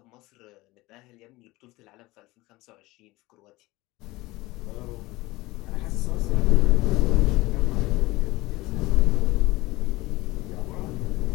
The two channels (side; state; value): right; quieter; 20.3 dB